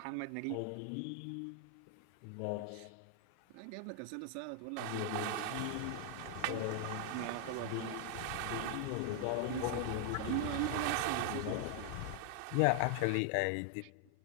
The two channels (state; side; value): different; both; correlation 0.00